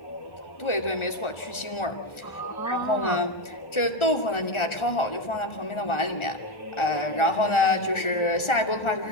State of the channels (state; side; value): late; right; 1.4 ms